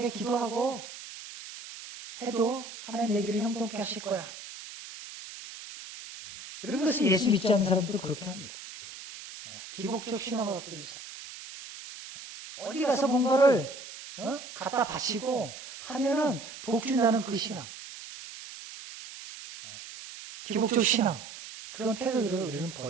기도하고 해도 하나님 내 길을 형통케 하실 거야. 여러분, 그래서 예수 믿지 않는 사람들도 그렇게 합니다. 기복적 신앙을 갖고 있는 사람. 어디 가서 뭔가를 갖다 바치고 하면은 복 준다는 그 신앙. 기복적 신앙. 그런 태도들을 우리는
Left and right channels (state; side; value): noise; right; hiss, 13 dB below the sound